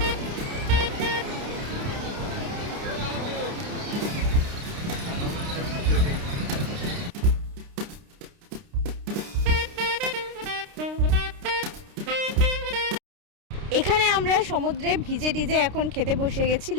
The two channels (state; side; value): late; left; 29 ms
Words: এখানে আমরা সমুদ্রে ভিজে টিজে এখন খেতে বসে গেছি